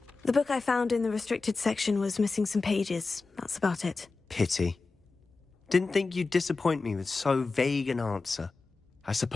The book I found in the restricted section was missing some pages. That's about it. Pity. Didn't think you'd disappoint me with so vague an answer. I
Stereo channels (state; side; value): quieter; right; 3.9 dB